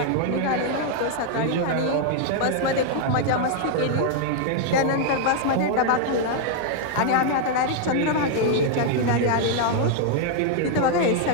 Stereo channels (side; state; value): both; different; correlation -0.01